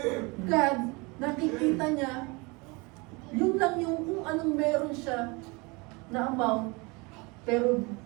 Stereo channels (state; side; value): quieter; left; 27.3 dB